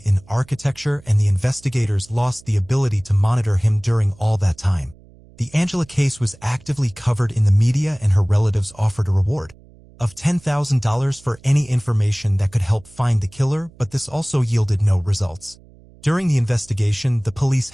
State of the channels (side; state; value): right; noise; hum, 25 dB below the sound